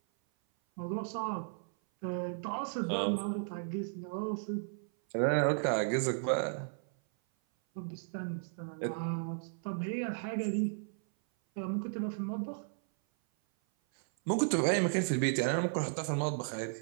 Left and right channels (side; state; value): left; silent; 55 dB below the other